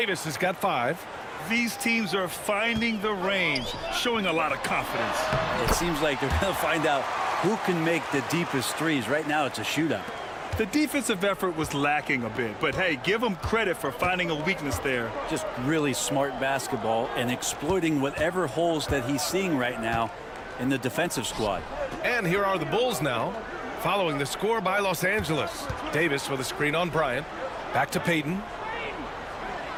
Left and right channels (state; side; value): identical; both; correlation 1.00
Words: has got 5. These teams are finding the range, showing a lot of confidence. It seems like they're going to find out who can make the deepest threes. Right now, it's a shootout. The defensive effort was lacking a bit, but hey, give them credit for finding a weakness there. Just really smart basketball and exploiting whatever holes that he's seeing right now in the defensive squad. And here are the Bulls now, following the score by Los Angeles. Davis with a screen on Bryant. Back to Payton.